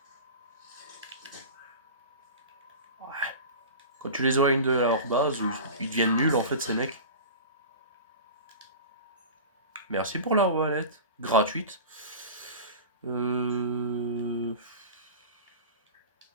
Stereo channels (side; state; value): both; inverted; correlation -0.33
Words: Quand tu les éloignes de leur base, ils deviennent nuls en fait ces mecs. Merci pour leur valette. Gratuite.